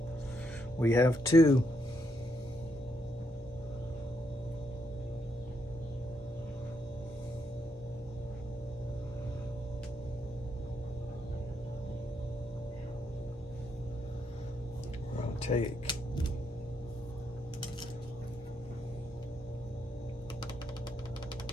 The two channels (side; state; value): both; normal; correlation 0.78